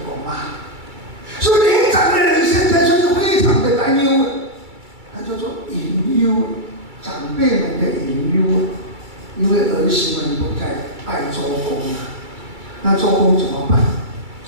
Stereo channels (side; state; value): left; late; 2.3 ms